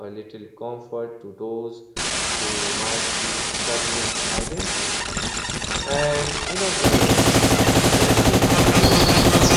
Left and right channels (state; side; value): identical; both; correlation 1.00